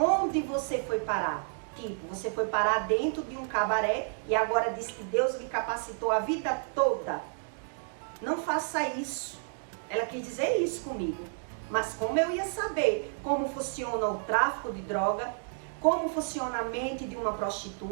você foi parar? Tipo, você foi parar dentro de um cabaré e agora diz que Deus lhe capacitou a vida toda. Não faça isso. Ela quis dizer isso comigo. Mas como eu ia saber como funciona o tráfico de droga, como funciona a mente de uma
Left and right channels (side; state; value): left; silent; 57 dB below the other